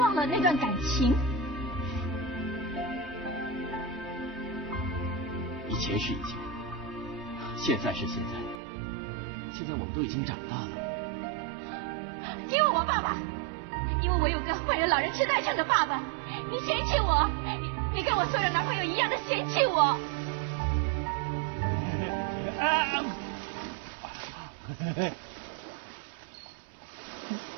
了那段感情。以前是以前，现在是现在，现在我们都已经长大了。因为我爸爸，因为我有个患有老人痴呆症的爸爸，你嫌弃我，你跟我所有的男朋友一样的嫌弃我。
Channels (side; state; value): left; drops out; at 8.6 s